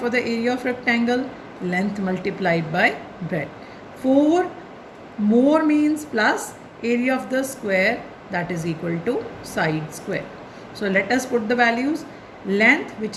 the area of rectangle? Length multiplied by breadth. 4 more means plus area of the square, that is equal to side square. So let us put the values. Length, which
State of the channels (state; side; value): identical; both; correlation 1.00